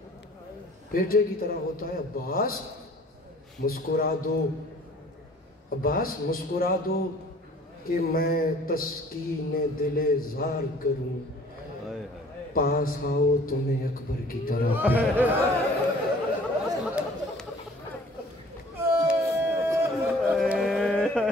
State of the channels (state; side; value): normal; both; correlation 0.52